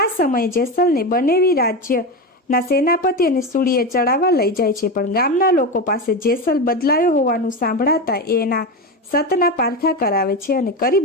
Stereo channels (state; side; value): normal; both; correlation 0.18